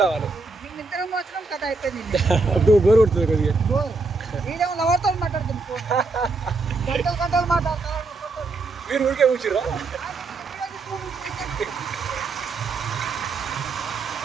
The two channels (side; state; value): left; quieter; 3.7 dB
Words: రావాలి. అప్పుడు బోర్ కొడుతుంది కొద్దిగా. మీరు ఊరికే కూర్చురా.